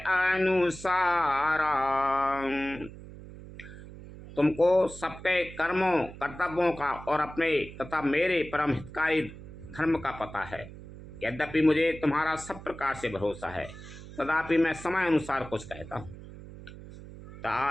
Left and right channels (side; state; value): right; noise; hum, 15 dB below the sound